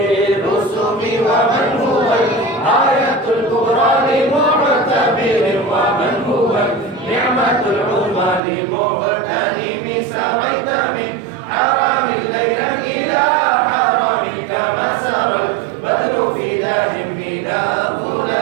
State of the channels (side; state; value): left; drops out; at 8.4 s